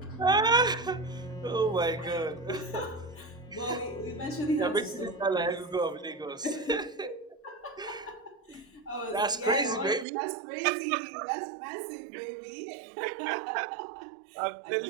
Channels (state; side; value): drops out; left; at 10.1 s